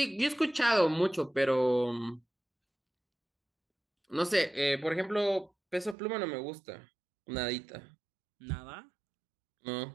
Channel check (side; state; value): left; drops out; at 6.0 s